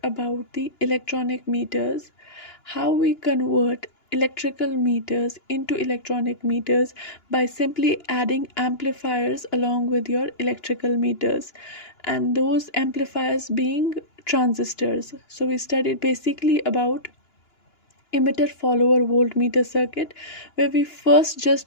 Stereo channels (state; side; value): late; right; 2.9 ms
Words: about the electronic meters, how we convert electrical meters into electronic meters by simply adding amplifiers along with your electrical meters, and those amplifiers being transistors. So we studied basically about emitter follower voltmeter circuit, where we first